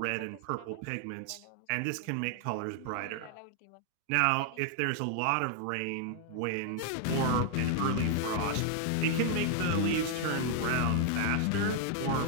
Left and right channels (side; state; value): both; different; correlation 0.00